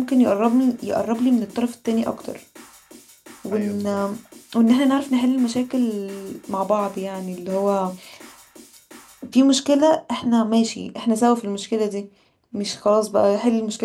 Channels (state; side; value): identical; both; correlation 1.00